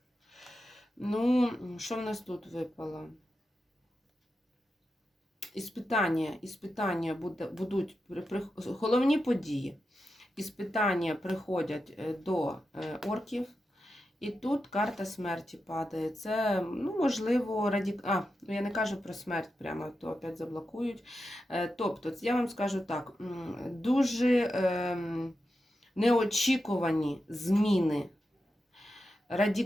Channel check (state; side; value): normal; both; correlation 0.89